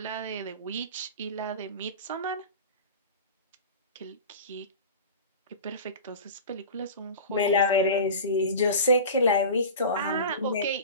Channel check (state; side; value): inverted; both; correlation -0.33